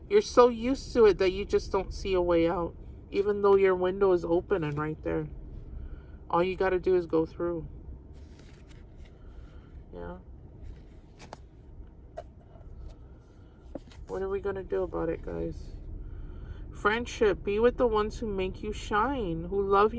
You're so used to it that you just don't see a way out, even though your window is open and right there. All you got to do is go through. Yeah. What are we going to do about it, guys? Friendship. Be with the ones who make you shine, who love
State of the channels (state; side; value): identical; both; correlation 1.00